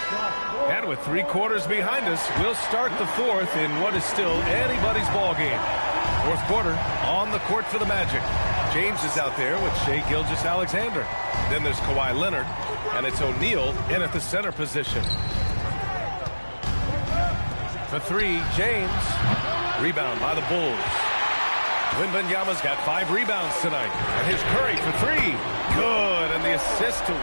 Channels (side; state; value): both; inverted; correlation -1.00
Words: And with 3 quarters behind us, we'll start the 4th in what is still anybody's ball game. 4th quarter on the court for the Magic. James is out there with Shai Gilgeous-Alexander. Then there's Kawhi Leonard, and it's O'Neal in at the center position. For 3, James. Rebound by the Bulls. Wembanyama's got 5 rebounds tonight. And here's Curry for 3. Good, and the assist to